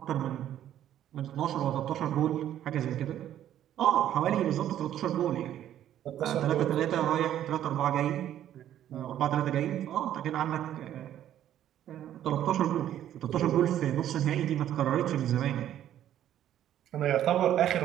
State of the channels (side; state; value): left; quieter; 11.4 dB